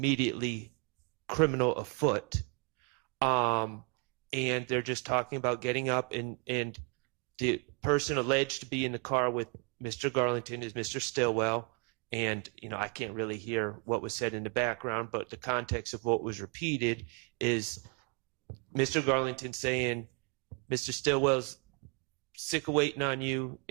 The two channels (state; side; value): quieter; left; 31.3 dB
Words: criminal afoot. And they're just talking about getting up, and the person alleged to be in the car with Mr. Garlington is Mr. Stillwell. And, I can't really hear what was said in the background, but the context of what was repeated is Mr. Garlington saying, Mr. Stillwell's sick of waiting on you